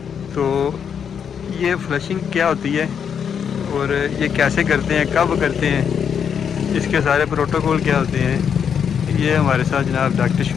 تو یہ فلشنگ کیا ہوتی ہے اور یہ کیسے کرتے ہیں، کب کرتے ہیں، اس کے سارے پروٹوکول کیا ہوتے ہیں، یہ ہمارے ساتھ جناب ڈاکٹر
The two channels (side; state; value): right; quieter; 7.5 dB